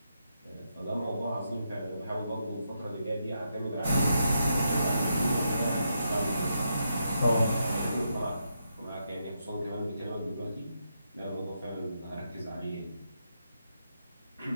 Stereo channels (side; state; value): both; inverted; correlation -0.82